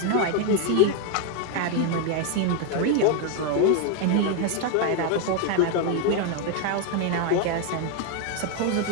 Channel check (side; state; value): both; different; correlation 0.01